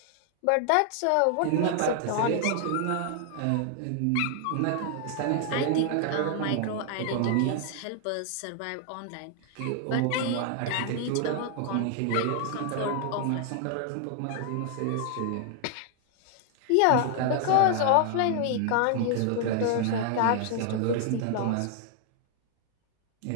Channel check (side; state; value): both; different; correlation 0.00